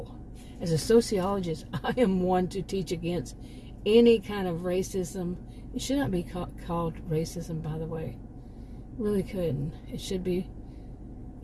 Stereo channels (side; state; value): both; identical; correlation 1.00